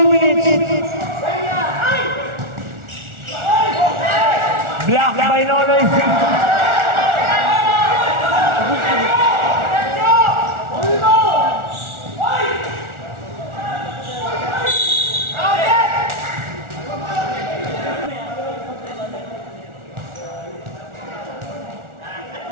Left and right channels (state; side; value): late; left; 1.4 ms